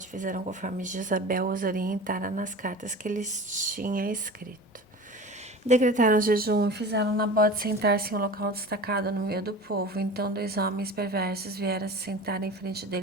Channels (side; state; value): both; normal; correlation 0.35